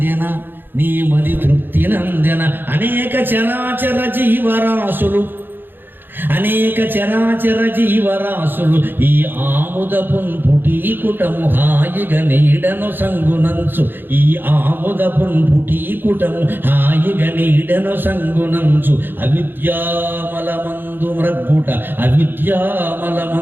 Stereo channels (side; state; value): left; late; 0.097 ms